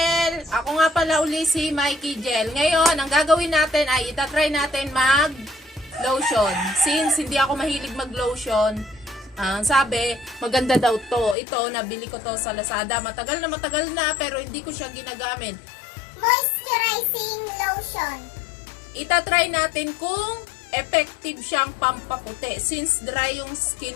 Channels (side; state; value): right; drops out; at 11.4 s